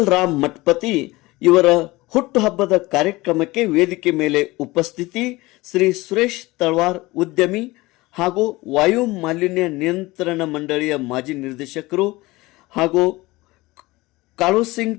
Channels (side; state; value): right; quieter; 20.7 dB